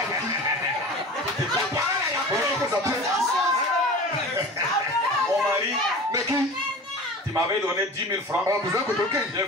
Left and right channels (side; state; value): both; normal; correlation 0.37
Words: mari, tu m'avais donné 10 000 francs. J'ai